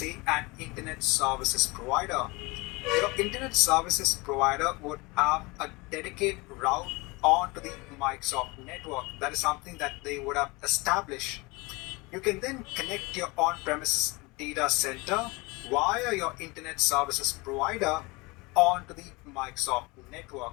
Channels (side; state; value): right; quieter; 25.1 dB